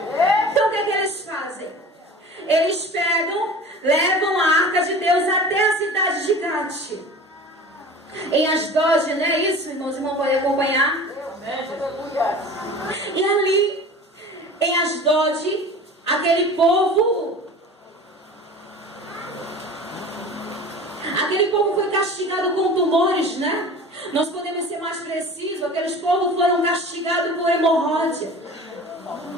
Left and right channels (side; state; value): both; normal; correlation 0.39